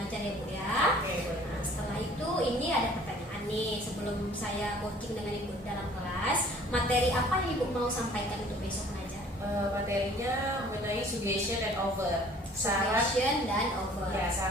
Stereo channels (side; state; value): both; normal; correlation 0.53